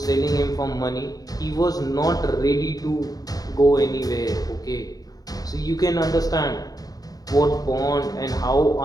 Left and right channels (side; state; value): right; late; 0.18 ms